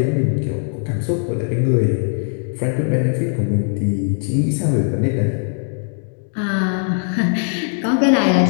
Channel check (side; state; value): right; silent; 66 dB below the other